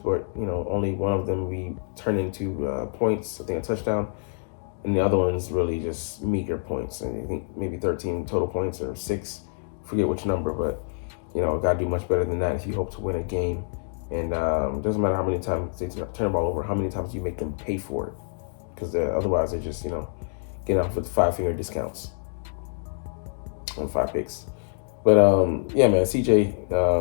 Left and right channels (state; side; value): silent; right; digital silence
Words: only one of them we turned into points, I think a touchdown. And the other one's really just meager points. And I think maybe 13 total points or 6. Forget which number, but, got to do much better than that if you hope to win a game. And it doesn't matter how many times they turn the ball over, how many times you make them pay for it. because otherwise they just get off with 5-finger discounts on 5 picks. But yeah, man, CJ